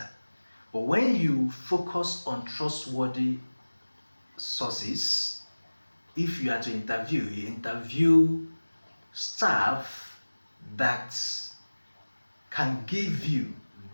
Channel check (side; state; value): both; inverted; correlation -1.00